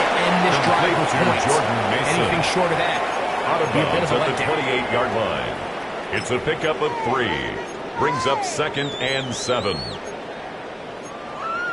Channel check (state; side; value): identical; both; correlation 1.00